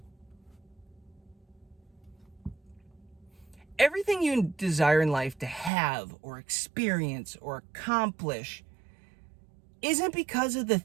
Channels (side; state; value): left; drops out; at 5.7 s